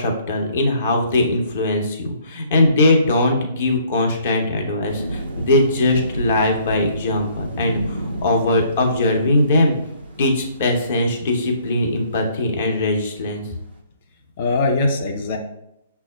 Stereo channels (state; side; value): inverted; both; correlation -0.61